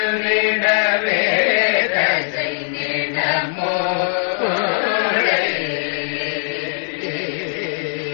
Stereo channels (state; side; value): silent; right; digital silence